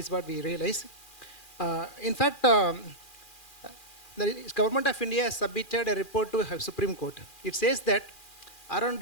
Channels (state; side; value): late; right; 2.4 ms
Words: what we realize. In fact, the government of India has submitted a report to Supreme Court. It says that around